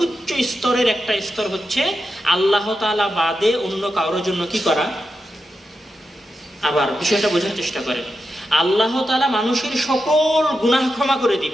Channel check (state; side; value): normal; both; correlation 0.88